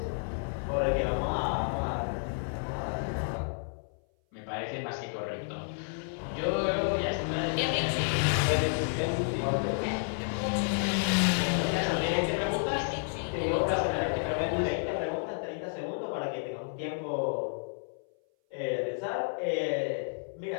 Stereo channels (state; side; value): silent; right; 56 dB below the other